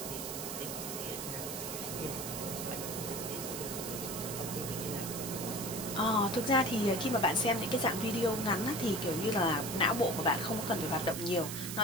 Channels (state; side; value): noise; right; hiss, 6 dB below the sound